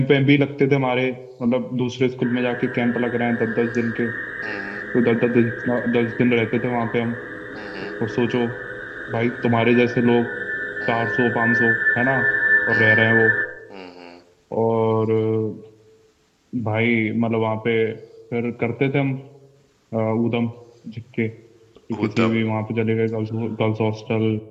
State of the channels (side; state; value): both; identical; correlation 1.00